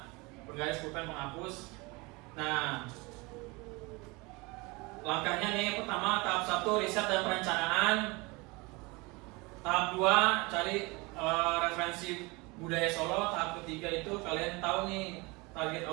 penggaris, pulpen, penghapus. Nah, langkahnya nih, pertama tahap 1 riset dan perencanaan. Tahap 2 cari referensi budaya Solo. Tahap ketiga itu kalian tahu nih target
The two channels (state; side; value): quieter; left; 25.6 dB